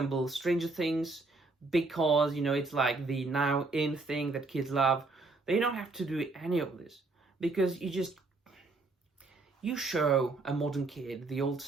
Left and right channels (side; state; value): left; quieter; 3.4 dB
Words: Stranger Things because, you know, it's like the now in thing that kids love. They don't have to do any of this because you show a modern kid the old